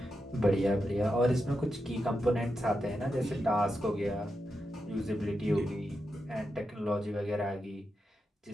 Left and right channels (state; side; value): normal; both; correlation 0.87